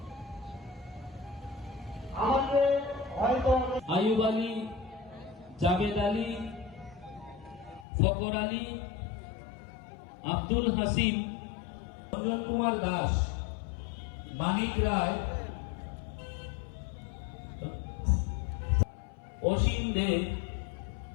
আমাকে হয়তো আয়ুব আলী, জাভেদ আলী, ফকর আলী, আব্দুল হাসিম, রঞ্জন কুমার দাস, মানিক রায়, অসীম দে,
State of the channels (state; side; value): drops out; right; at 7.9 s